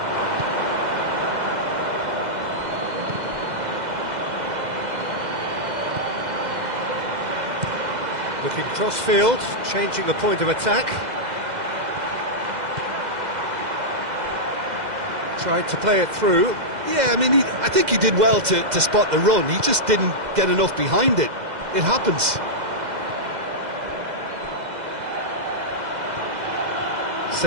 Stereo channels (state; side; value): late; left; 2.0 ms